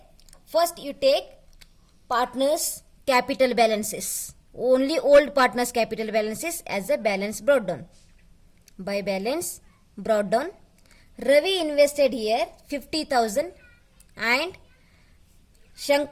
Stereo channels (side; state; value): both; identical; correlation 1.00